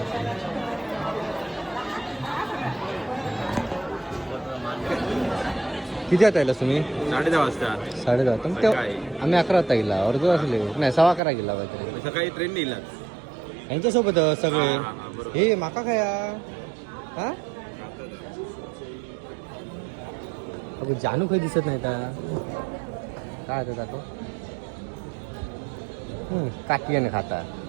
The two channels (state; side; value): drops out; left; at 11.2 s